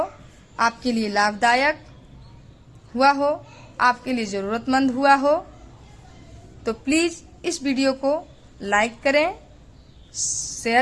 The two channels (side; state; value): both; identical; correlation 1.00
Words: आपके लिए लाभदायक हुआ हो, आपके लिए ज़रूरतमंद हुआ हो, तो प्लीज़ इस वीडियो को लाइक करें,